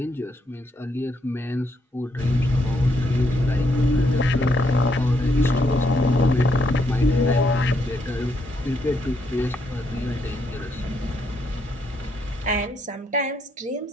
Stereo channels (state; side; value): normal; both; correlation 0.75